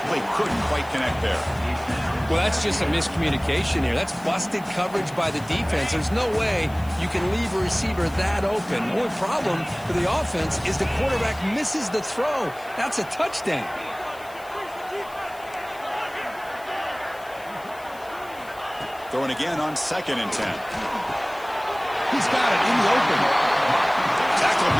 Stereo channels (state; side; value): noise; left; hiss, 23 dB below the sound